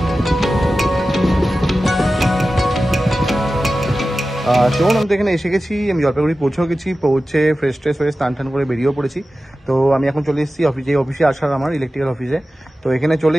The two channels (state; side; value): normal; both; correlation 0.94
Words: চলুন, আমি তো এখানে এসে গেছি, আমি জলপাইগুড়ি পৌঁছেও গেছি। পৌঁছে ফ্রেশ ট্রেশ হয়ে স্নান টান করে বেরিয়েও পড়েছি। তো আমি এখন চলে এসেছি অফিসে, অফিসে আসার আমার ইলেকট্রিক্যাল অফিসে। তো এখানে চলে